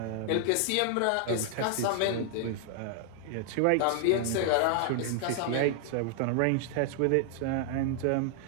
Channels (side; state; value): both; different; correlation 0.00